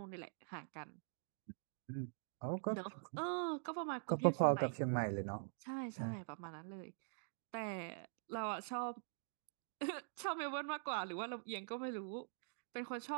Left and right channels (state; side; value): silent; left; digital silence